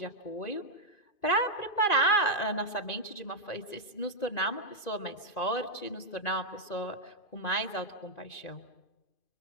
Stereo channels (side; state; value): right; late; 2.5 ms